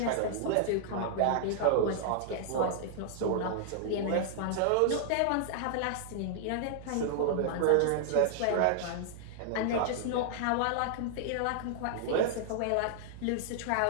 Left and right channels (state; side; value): different; both; correlation -0.01